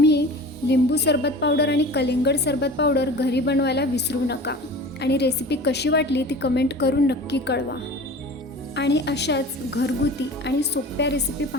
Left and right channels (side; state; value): both; normal; correlation 0.38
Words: लिंबू सरबत पावडर आणि कलिंगड सरबत पावडर घरी बनवायला विसरू नका आणि रेसिपी कशी वाटली ती कमेंट करून नक्की कळवा. आणि अशाच घरगुती आणि सोप्या रेसिपी